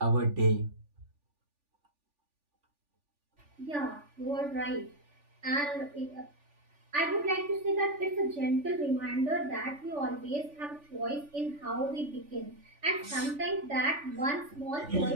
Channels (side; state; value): left; late; 3.4 ms